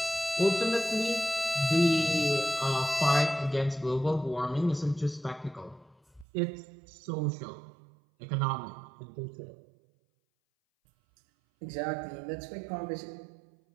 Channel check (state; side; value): drops out; left; at 6.2 s